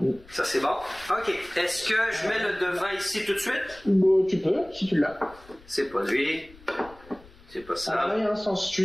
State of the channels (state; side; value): noise; left; rumble, 23 dB below the sound